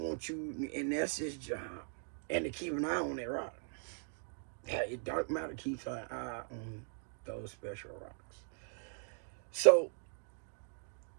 you, and that's its job. And to keep an eye on that rock. Dark matter keeps an eye on those special rocks. So,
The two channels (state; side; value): silent; left; 51 dB below the other